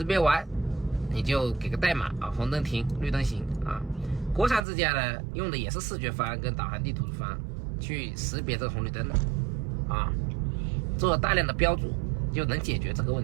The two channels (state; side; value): drops out; left; at 4.6 s